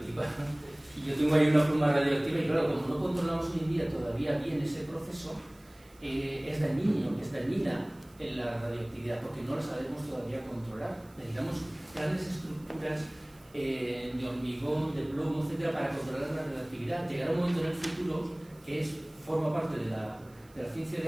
Y yo tengo ahí una pluma radioactiva y claro, como no controlamos hoy en día todavía bien ese proceso, es dañina en la radioactividad, porque no la sabemos todavía controlar. Necesitamos grandes estructuras de hormigón, de plomo, etcétera, para controlar la radioactividad. Llegará un momento en el futuro que forma parte de la ciencia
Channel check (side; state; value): right; noise; hiss, 28 dB below the sound